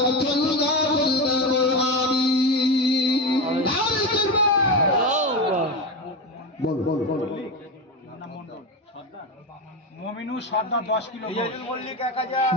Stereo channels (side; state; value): both; normal; correlation 0.18